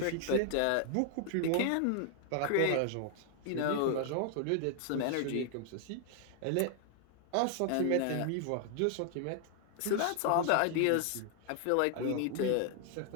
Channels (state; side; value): different; both; correlation 0.00